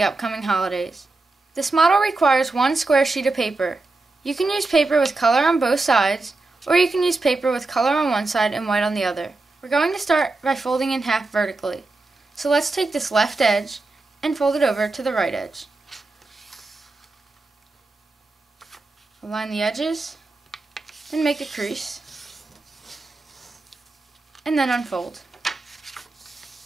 upcoming holidays. This model requires one square sheet of paper. You can use paper with color on both sides, or you can use paper with color on one side and white on the other. We're going to start by folding in half vertically. So let's take this left edge and fold it over to the right edge. Align the edges and make a crease, and then unfold.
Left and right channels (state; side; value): quieter; left; 3.3 dB